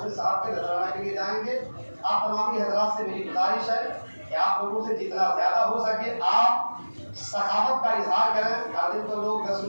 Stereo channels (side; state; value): both; inverted; correlation -1.00